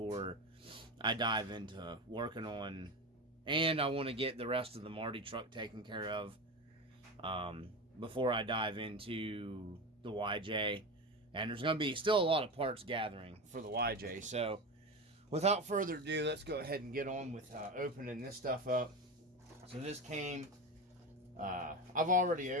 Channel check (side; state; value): both; normal; correlation 0.23